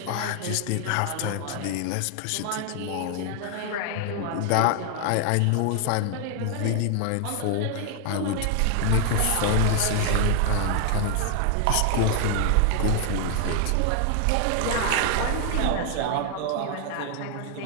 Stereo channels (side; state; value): both; different; correlation 0.00